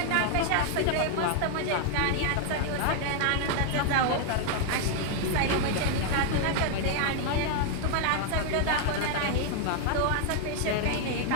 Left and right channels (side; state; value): both; different; correlation 0.00